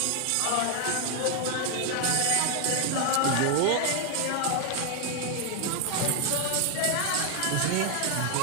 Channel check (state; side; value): different; both; correlation 0.01